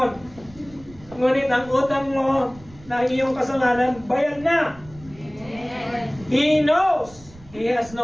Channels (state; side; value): noise; right; rumble, 21 dB below the sound